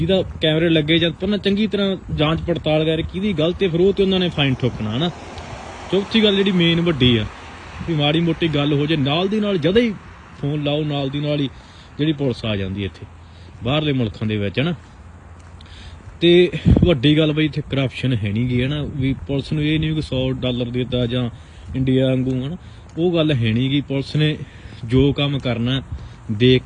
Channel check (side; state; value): both; identical; correlation 1.00